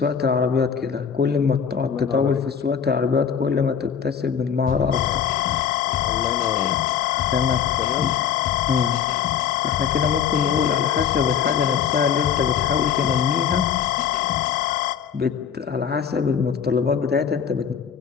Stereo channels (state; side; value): quieter; right; 7.5 dB